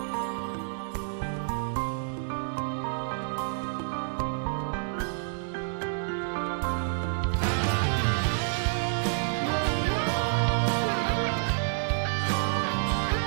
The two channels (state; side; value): silent; left; digital silence